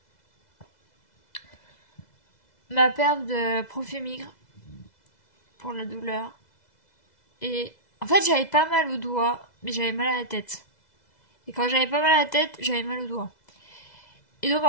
Ma perf de Profémigre pour la douleur. Et en fait, j'avais pas mal au doigt, mais j'avais mal à la tête. Et quand j'avais pas mal à la tête, j'avais mal au doigt. Et donc,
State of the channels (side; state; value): right; late; 2.0 ms